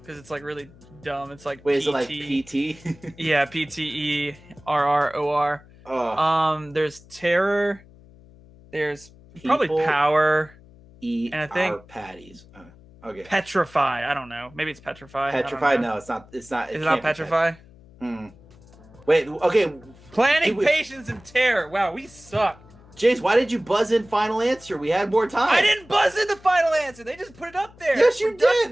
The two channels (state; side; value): noise; left; hum, 24 dB below the sound